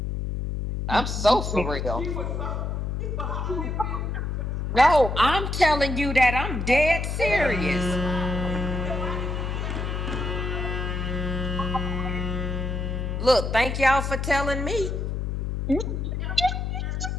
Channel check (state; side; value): noise; left; hum, 2 dB below the sound